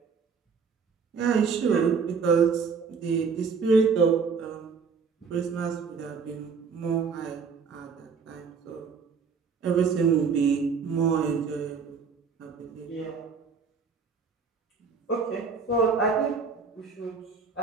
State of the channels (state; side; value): quieter; left; 5.5 dB